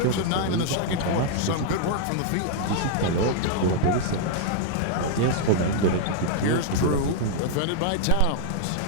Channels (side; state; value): both; different; correlation -0.01